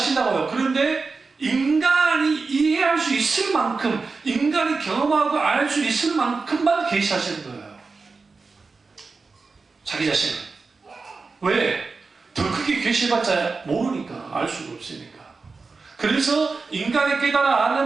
그런데 인간이 이해할 수 있을 만큼, 인간이 경험하고 알 수 있을 만큼만 계시하시는 거예요. 자기 자신을. 왜? 더 크게 계시해봤자 모르니까, 알 수가 없으니까. 그래서 인간이 깨달아 아는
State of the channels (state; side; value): quieter; left; 4.3 dB